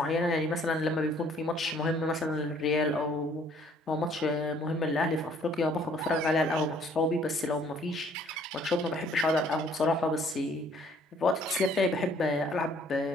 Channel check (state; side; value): normal; both; correlation 0.60